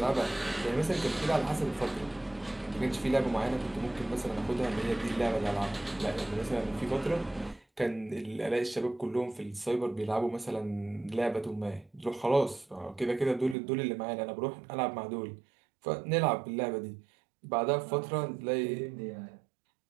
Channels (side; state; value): left; drops out; at 13.6 s